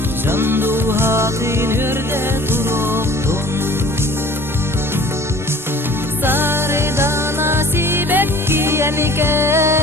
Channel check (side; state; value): both; normal; correlation 0.48